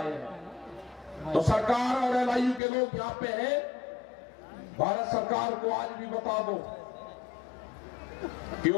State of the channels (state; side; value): drops out; right; at 2.6 s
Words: हैं। तो सरकार और एलआईयू के लोग यहाँ पे हैं, भारत सरकार को आज भी बता दो कि